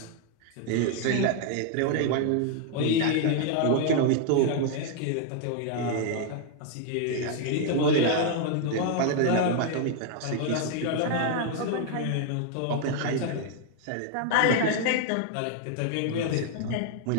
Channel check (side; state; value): both; different; correlation 0.00